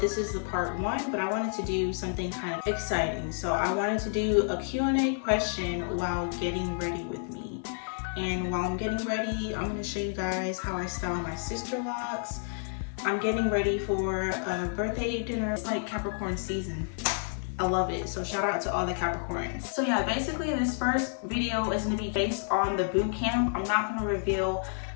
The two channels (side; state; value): right; silent; digital silence